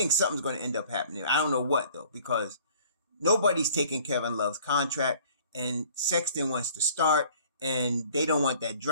something's going to end up happening. I don't know what though, because nobody's taking Kevin Love's contract and Sexton wants to start. And they don't want that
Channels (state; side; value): inverted; both; correlation -0.52